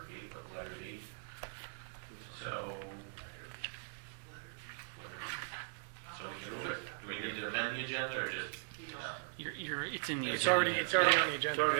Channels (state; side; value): silent; left; digital silence